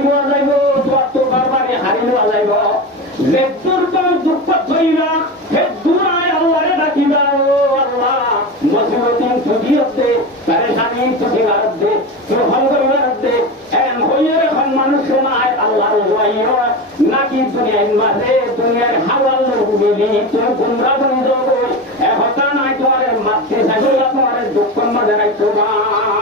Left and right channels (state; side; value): normal; both; correlation 0.23